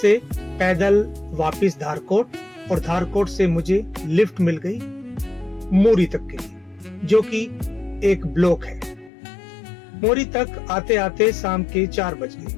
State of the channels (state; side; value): drops out; right; at 9.1 s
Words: पैदल वापस धारकोट और धारकोट से मुझे लिफ्ट मिल गई मोरी तक के लिए, जो कि एक ब्लॉक है। मोरी तक आते आते शाम के 4 बज गए।